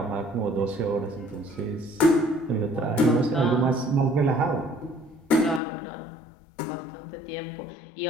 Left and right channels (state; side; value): drops out; right; at 5.6 s